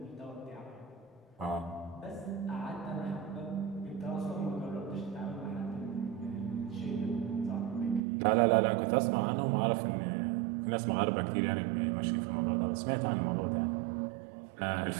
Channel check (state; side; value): drops out; left; at 8.0 s